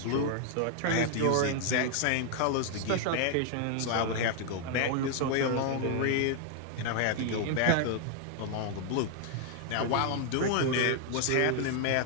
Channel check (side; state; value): both; different; correlation 0.00